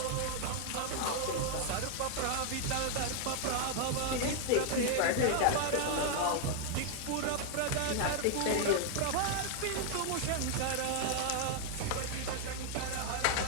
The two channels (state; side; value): different; both; correlation 0.00